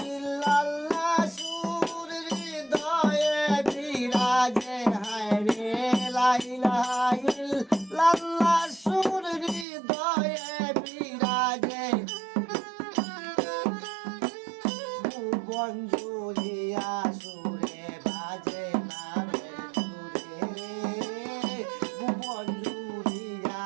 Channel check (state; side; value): drops out; left; at 9.7 s